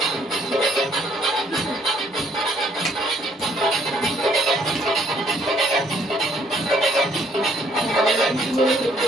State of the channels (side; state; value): both; normal; correlation 0.65